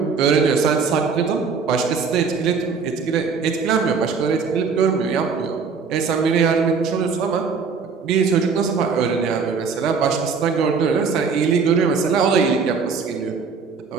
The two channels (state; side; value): quieter; left; 5.3 dB